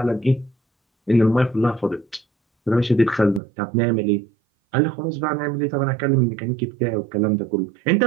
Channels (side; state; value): left; drops out; at 3.4 s